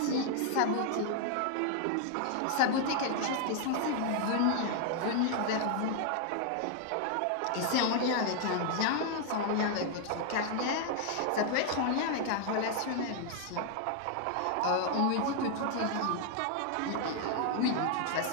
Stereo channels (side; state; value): both; different; correlation 0.00